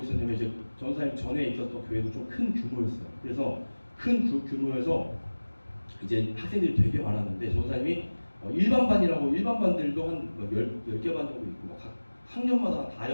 있었냐면 이제 전도사님 전에 있었던 교회도 좀 큰 규모였어요. 그래서 큰 규모여서 이제 학생들이 되게 많았는데 전도사님이 일반 반들도 한 10개 반 정도 있고 각 학년마다 다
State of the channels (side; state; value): both; inverted; correlation -1.00